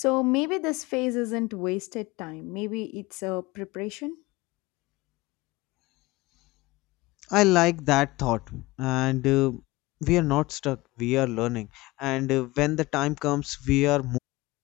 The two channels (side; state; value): right; quieter; 20.8 dB